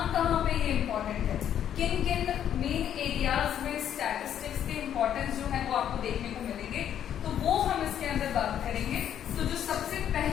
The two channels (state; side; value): quieter; right; 9.9 dB